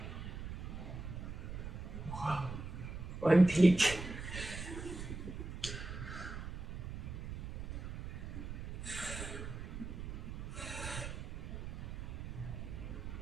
Whoa. One peak.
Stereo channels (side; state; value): right; noise; rumble, 7 dB below the sound